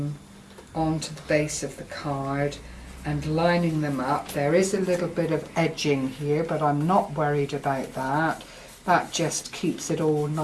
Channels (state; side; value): identical; both; correlation 1.00